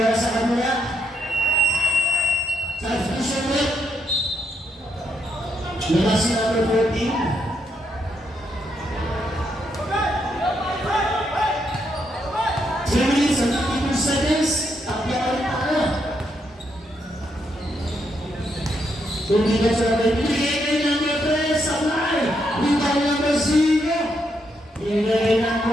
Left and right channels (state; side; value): normal; both; correlation 0.78